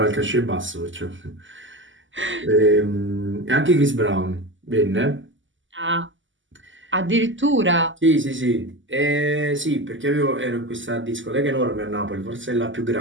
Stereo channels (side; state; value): left; late; 0.55 ms